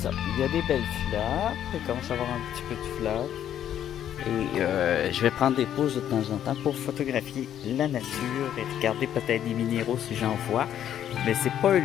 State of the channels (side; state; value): right; quieter; 10.4 dB